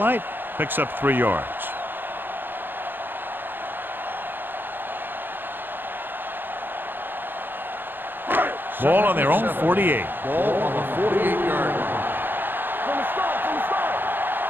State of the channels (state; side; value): late; left; 0.096 ms